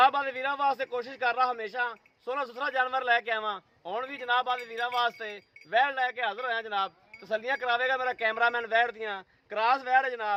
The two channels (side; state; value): both; identical; correlation 1.00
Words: आदे वीरों वास्ते कोशिश कर रहा हमेशा सोहना सुथरा जानवर लैके आवां। हुण भी जनाब आदे वीरों वास्ते वैड़ लैके हाजिर होया। जनाब तसल्लियां करावेगा मेरा कैमरामैन वैड़ दियां। क्रॉस वैड़ है